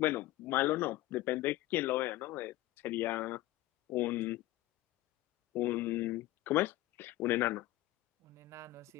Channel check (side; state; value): right; quieter; 16.9 dB